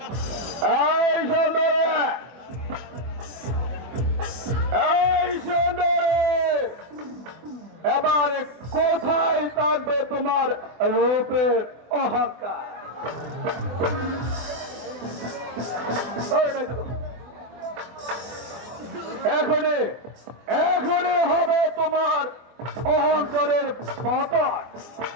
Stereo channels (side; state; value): left; late; 24 ms